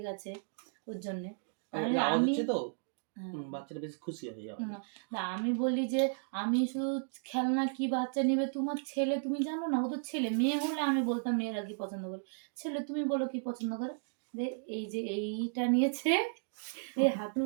গেছে ওর জন্যে। বাচ্চাটা বেশ খুশি হয়। না আমি বলি যে আমি শুধু খেলনা কি বাচ্চা নেবে, তোমার ছেলে তুমি জানো না, ও তো ছেলে। মেয়ে হলে আমি বলতাম মেয়েরা কি পছন্দ করে, ছেলে তুমি বলো কি পছন্দ করে। এই যে এইটা নিয়েছে, এই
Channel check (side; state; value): left; silent; digital silence